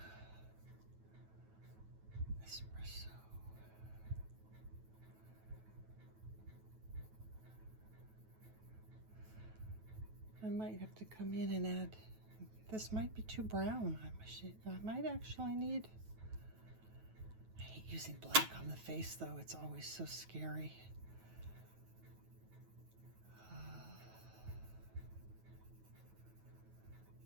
Espresso. I might have to come in and add, this might be too brown. I might actually need, I hate using black on the face though. It's always so scary. I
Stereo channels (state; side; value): late; left; 9.2 ms